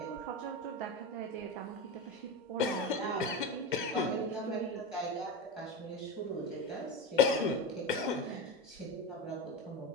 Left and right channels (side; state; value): both; normal; correlation 0.21